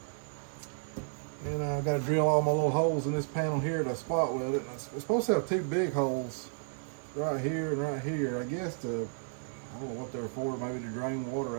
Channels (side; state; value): left; silent; digital silence